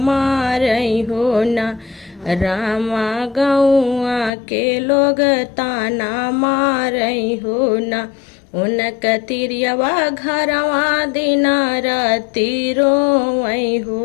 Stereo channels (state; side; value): drops out; right; at 4.3 s